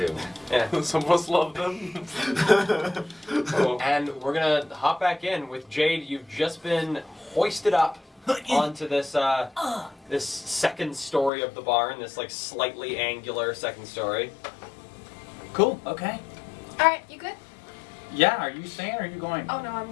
Yeah. Some of us love them. And we're gonna hop back in with Jade. You've just been hoisted up onto this this second story of the barn. This like slightly angular second story. Cool. Okay. All right, you good? Yeah. Are you staying or are you going? Oh no,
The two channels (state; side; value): drops out; right; at 11.3 s